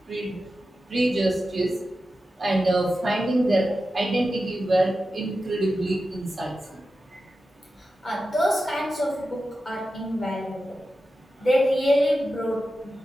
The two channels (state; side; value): normal; both; correlation 0.92